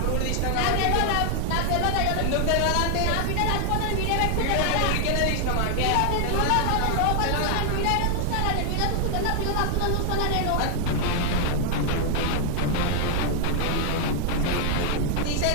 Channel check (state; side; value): different; both; correlation 0.00